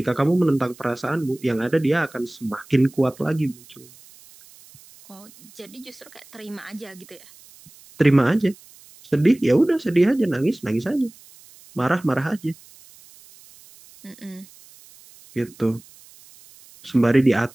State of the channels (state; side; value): noise; right; hiss, 24 dB below the sound